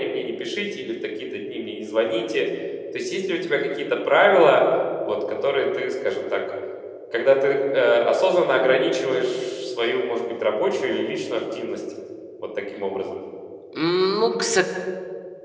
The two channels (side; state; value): both; identical; correlation 1.00